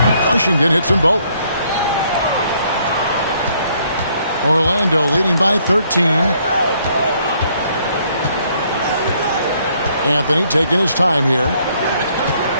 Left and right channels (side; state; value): both; inverted; correlation -0.67